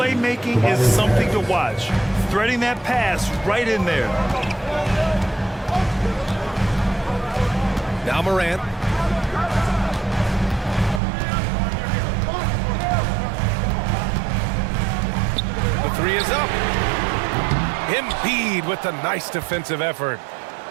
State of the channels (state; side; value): drops out; left; at 11.0 s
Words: is something to watch. Threading that pass right in there. Now Morant. The three is up. Embiid with a nice defensive effort.